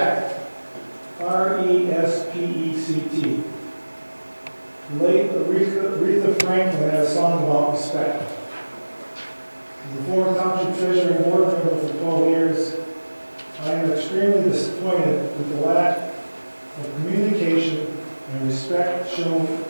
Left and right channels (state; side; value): inverted; both; correlation -1.00